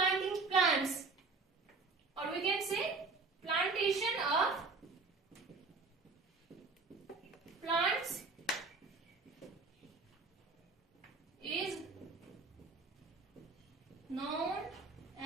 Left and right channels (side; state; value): left; quieter; 4.0 dB